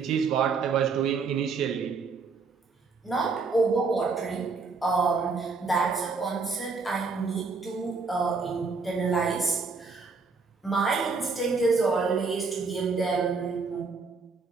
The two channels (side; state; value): left; quieter; 4.5 dB